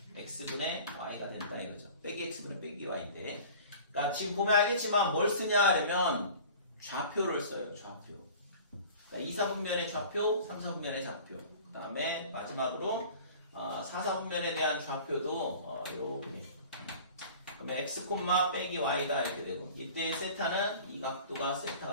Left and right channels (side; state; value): both; inverted; correlation -0.43